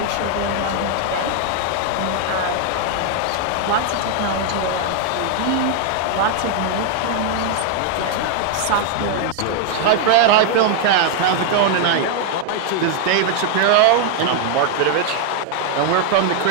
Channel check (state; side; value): different; both; correlation 0.00